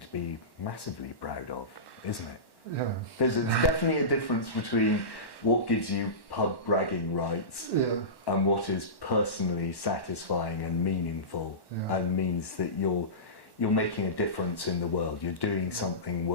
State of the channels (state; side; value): late; right; 1.1 ms